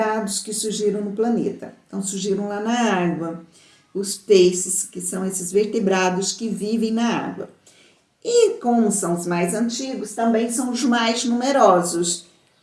que surgiram no planeta. Então, surgiram lá na água. Os peixes, que são esses vertebrados que vivem na água. E como são os mais antigos, também são os mais numerosos.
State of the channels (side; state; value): both; identical; correlation 1.00